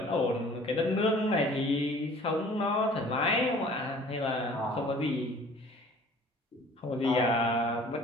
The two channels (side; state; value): both; normal; correlation 0.50